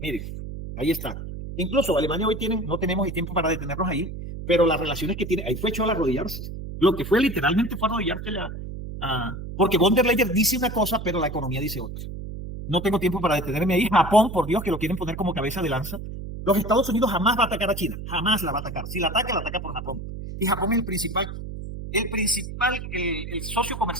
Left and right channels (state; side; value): noise; right; hum, 8 dB below the sound